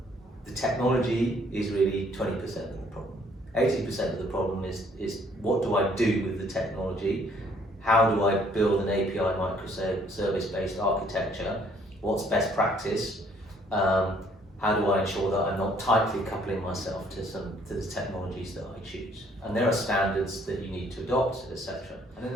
the technology is really 20% of the problem. 80% of the problem is what do I do with the technology? How do I build an API microservice-based architecture? What's best practice? How do I ensure that I'm not tightly coupling myself to the technologies that I choose? And there are standards that you need to adopt, etc. And then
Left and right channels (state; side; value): normal; both; correlation 0.63